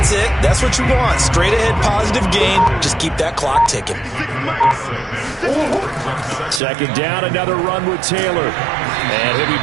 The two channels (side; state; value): left; drops out; at 6.6 s